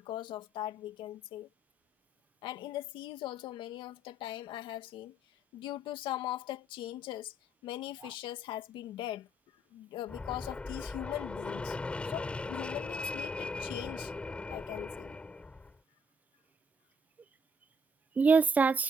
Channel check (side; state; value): both; normal; correlation 0.67